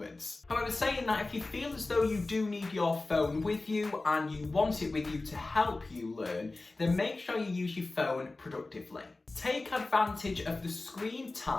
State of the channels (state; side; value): quieter; right; 3.2 dB